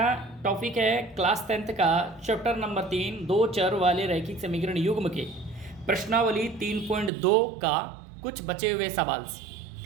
टॉपिक है क्लास 10th का चैप्टर नंबर 3 दो चर वाले रैखिक समीकरण युग्म के प्रश्नावली 3.2 का कुछ बचे हुए सवाल।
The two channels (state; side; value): drops out; left; at 7.1 s